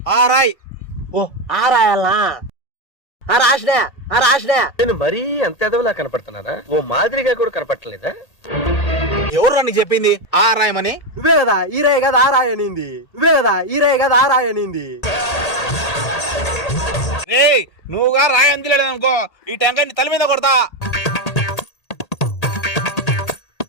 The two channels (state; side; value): late; right; 1.8 ms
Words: ఆ రాయి. ఓ ఆ రాయాలనా, ఆ రాసినా, ఆ రాసినా. నేను మరీ అంత ఎదవలా కనపడుతున్నారా? ఓ మాదిరిగా కూడా కనపడలేదా? ఎవరు నీకు చెప్పింది ఆ రాయమని? నువ్వే కదా ఈ రాయి కదా ఆ రాయి అనింది, నువ్వే కదా ఈ రాయి కదా ఆ రాయి అనింది. రే నువ్వుగా రాయి అందిలేడు అనుకో ఈ టెంకాయ తల మీద కొడతా.